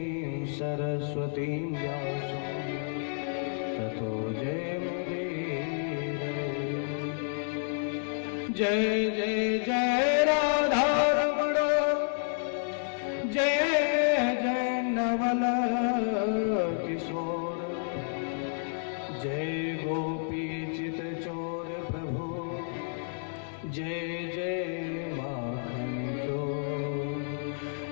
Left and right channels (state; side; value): silent; right; digital silence